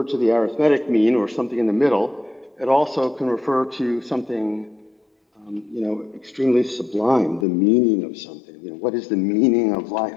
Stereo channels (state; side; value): drops out; right; at 7.5 s